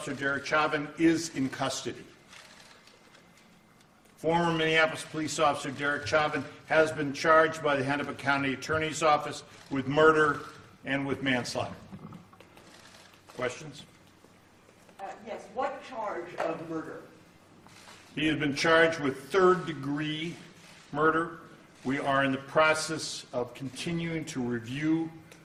Derek Chauvin is in custody. Former Minneapolis police officer Derek Chauvin has been charged by the Hennepin County Attorney's Office with murder and with manslaughter. Questions? Yes, what charge of murder? He has been charged with third-degree murder. We are in the process of continuing to review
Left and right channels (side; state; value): both; identical; correlation 1.00